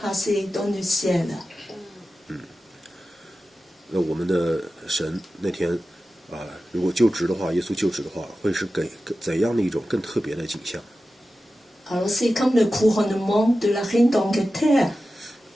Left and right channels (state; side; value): normal; both; correlation 0.94